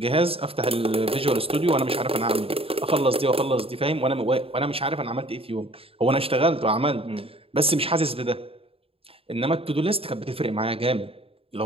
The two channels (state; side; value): late; left; 0.27 ms